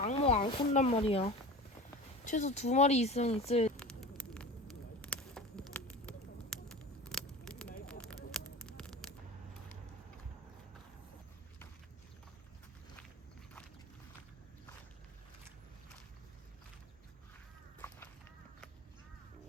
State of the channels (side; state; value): both; normal; correlation 0.34